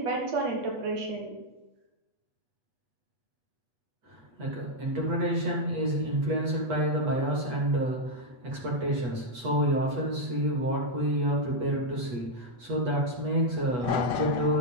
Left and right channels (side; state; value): left; late; 8.2 ms